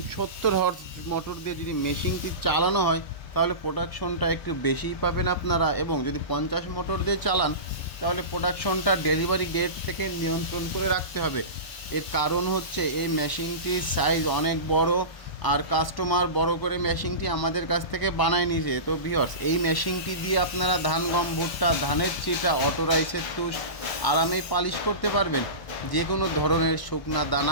70 হর্স মোটর দিয়ে যদি মেশিনটি চালানো হয় তাহলে প্রোডাকশনটা একটু বেশিই পাবেন আপনারা, এবং যদি 50 মোটর দিয়ে চালান তাহলে প্রোডাকশনটা ডেলিভারি ডেট থেকে নিয়ন্ত্রণ করে রাখতে হবে। এর কারণ হচ্ছে এই মেশিনটির সাইজ অনেক বড়, আর কাস্টমার বড় করে মেশিনটি আমাদের কাছ থেকে বানায় নিয়েছে। তো ভিউয়ার্স, এই মেশিনটি দিয়ে আপনারা ধান, গম, ভুট্টা, ধানের চিটা, অটো রাইসের তুষ আরামেই পালিশ করতে পারবেন। যে কোনো ধরনের শুকনা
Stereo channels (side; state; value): right; late; 1.3 ms